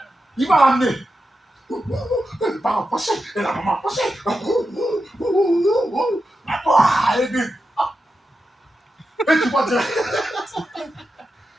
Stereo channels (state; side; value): normal; both; correlation 0.90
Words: il va l'amener. Les parents passés, et la maman passée. Et